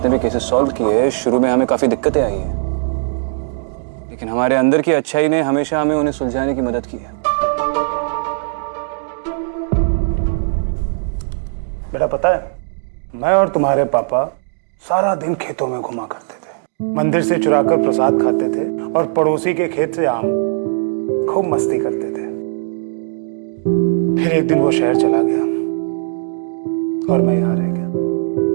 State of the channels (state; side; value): silent; left; digital silence